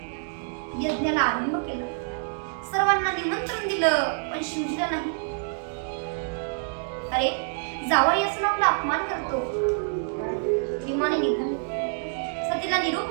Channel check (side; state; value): left; silent; digital silence